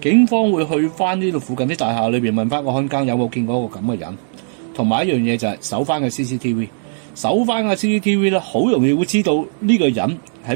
方會去翻呢度附近啲大廈裏邊問翻個看更有冇見過一個咁嘅人，同埋一樣嘢就係搜翻個 CCTV， 搜翻個 CCTV 咧，好容易會知道呢個人喺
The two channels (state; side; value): silent; left; digital silence